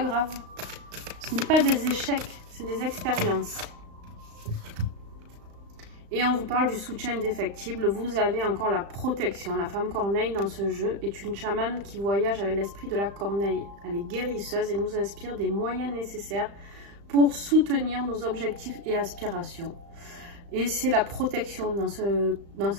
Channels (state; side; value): late; left; 35 ms